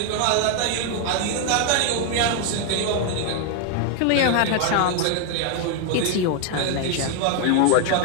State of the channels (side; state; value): both; different; correlation 0.00